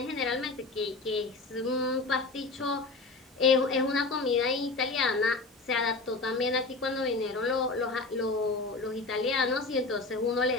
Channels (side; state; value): right; quieter; 3.6 dB